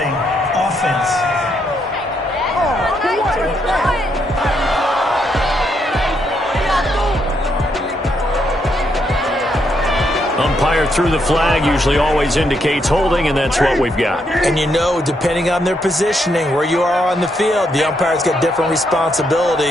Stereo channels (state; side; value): normal; both; correlation 0.77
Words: Offense. Umpire through the flag usually always indicates holding, and that's what we've got. And you know, depending on their positioning, where you are on the field, the umpire's got different